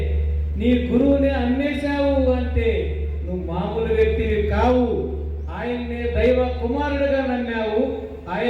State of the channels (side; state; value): both; identical; correlation 1.00